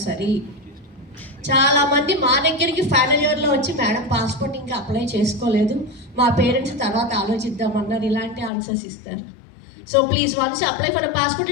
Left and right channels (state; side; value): drops out; right; at 8.5 s